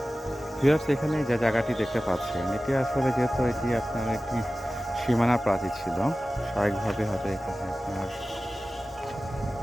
ভিউয়ার্স, এখানে যে জায়গাটি দেখতে পাচ্ছেন এটি আসলে যেহেতু এটি আপনার একটি সীমানা প্রাচীর ছিল, স্বাভাবিকভাবে হয়তো এখানে আপনার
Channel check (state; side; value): normal; both; correlation 0.96